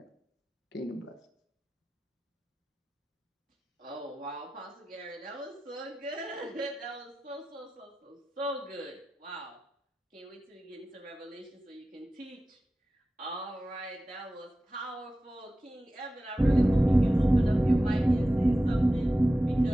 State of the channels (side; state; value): both; normal; correlation 0.95